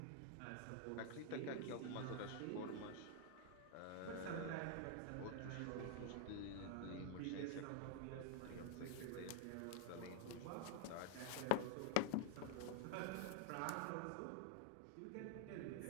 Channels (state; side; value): different; both; correlation 0.00